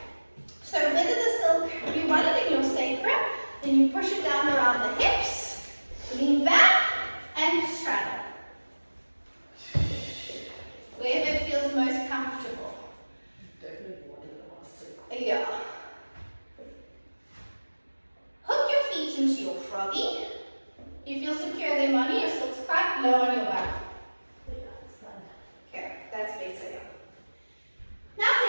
So whether the silk, you want it in your sacrum, then you push it down around the hips, lean back, and straddle. Wherever it feels most comfortable. Definitely want it in my silk. Yeah. Hook your feet into your froggy. You feel secure there, Moni? Your silk's quite low on your back. Okay, that's better. Now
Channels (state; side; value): inverted; both; correlation -1.00